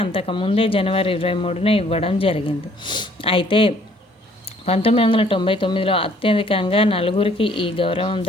అంతకుముందే జనవరి 23న ఇవ్వడం జరిగింది. అయితే 1999లో అత్యధికంగా 4గురికి ఈ గౌరవం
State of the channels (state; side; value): normal; both; correlation 0.61